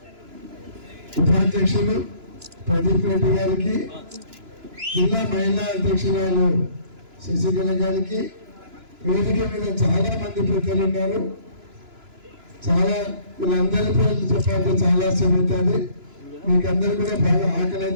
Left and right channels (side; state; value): left; late; 2.9 ms